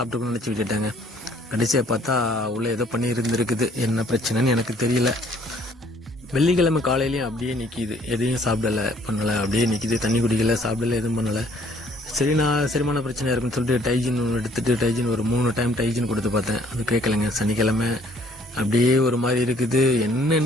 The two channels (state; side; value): normal; both; correlation 0.61